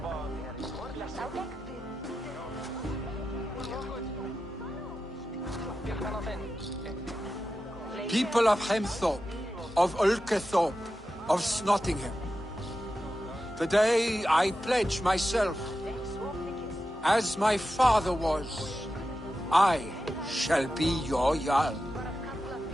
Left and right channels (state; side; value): normal; both; correlation 0.91